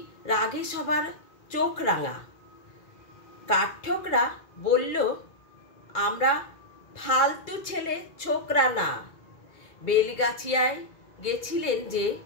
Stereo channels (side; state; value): right; late; 2.3 ms